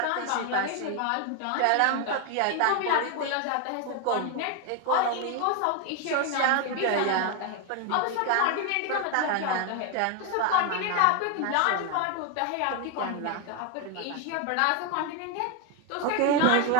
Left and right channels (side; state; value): both; different; correlation 0.01